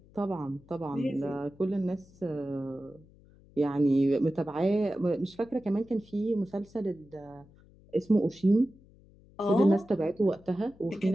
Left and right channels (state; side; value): noise; left; hum, 26 dB below the sound